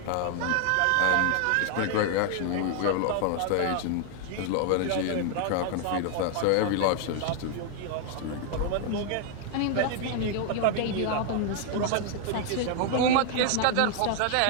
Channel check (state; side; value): different; both; correlation 0.00